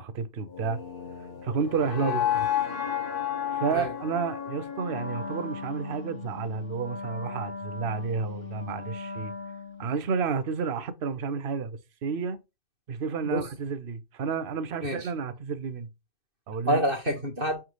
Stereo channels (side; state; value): left; late; 2.6 ms